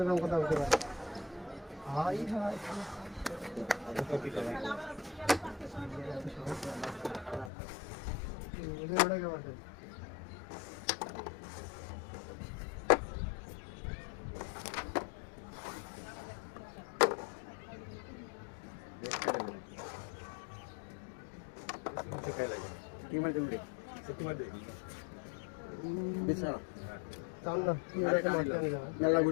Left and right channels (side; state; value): right; drops out; at 7.5 s